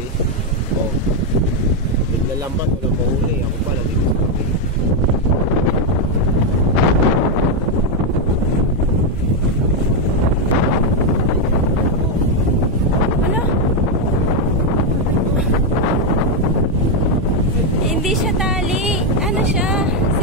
Oh. Naglalambat. Walang mahuli. Ako pa nandito sa tabi. Hindi siya tali. Ano siya?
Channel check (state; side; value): normal; both; correlation 0.03